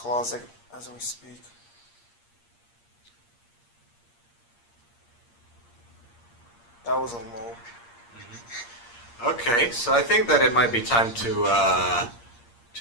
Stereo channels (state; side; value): late; right; 8.6 ms